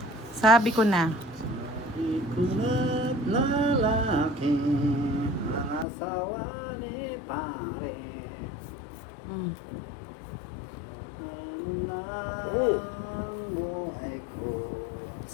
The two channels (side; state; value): right; drops out; at 5.9 s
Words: Sabi ko na. Ikunat na lalaki ang asawa ni pare. Mm. Ang buhay ko.